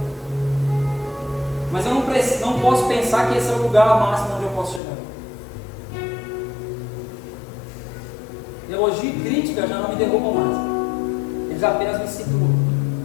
Mas eu não posso pensar que esse é o lugar máximo onde eu posso chegar. Elogio e crítica já não me derrubam mais. Eles apenas me situam.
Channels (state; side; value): drops out; right; at 4.8 s